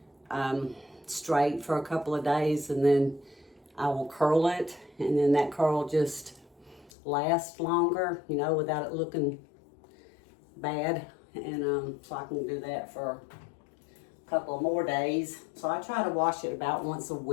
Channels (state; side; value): drops out; right; at 6.9 s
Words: straight for a couple of days, and then I will curl it, and then that curl just lasts longer, you know, without it looking bad. And so I can do that for a couple of more days. So I try to wash it about once a